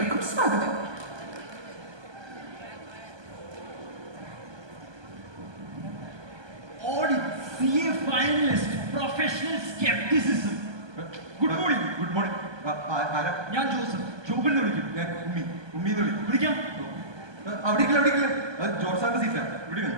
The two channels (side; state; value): left; late; 1.2 ms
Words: സ്വാഗതം. CA finalist, professional skepticism. Good morning. Good morning. ഞാൻ ജോസഫ്. ജോബിൽ നിന്ന് വിളിക്കും. ഞാൻ ഉമ്മി വിളിക്കാം. അവിടെ ജോർജ് സാറിന്റെ സീറ്റാ. ഇവിടെ